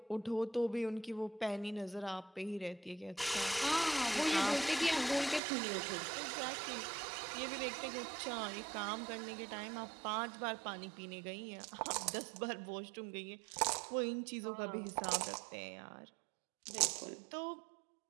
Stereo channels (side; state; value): left; drops out; at 5.4 s